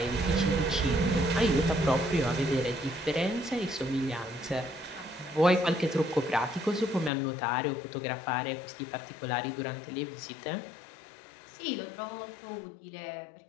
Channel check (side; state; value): right; drops out; at 7.1 s